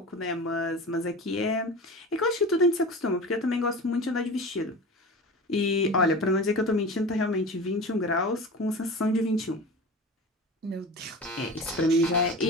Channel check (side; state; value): both; normal; correlation 0.33